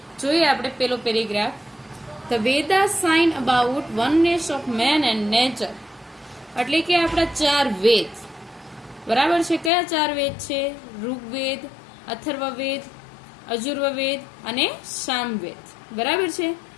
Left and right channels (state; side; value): drops out; right; at 9.7 s